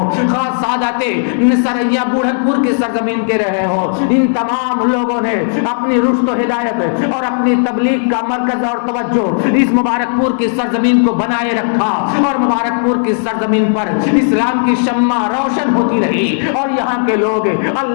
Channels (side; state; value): right; silent; digital silence